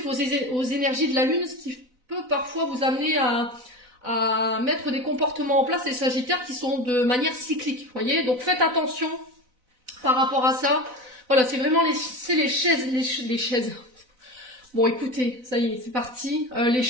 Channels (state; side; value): late; left; 4.0 ms